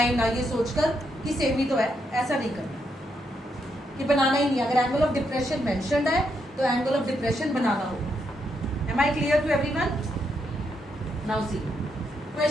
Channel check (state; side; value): normal; both; correlation 0.79